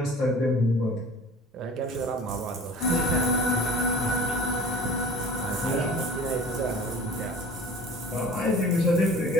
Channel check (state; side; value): normal; both; correlation 0.43